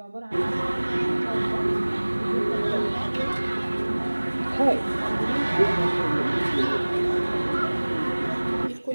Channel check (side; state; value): both; inverted; correlation -1.00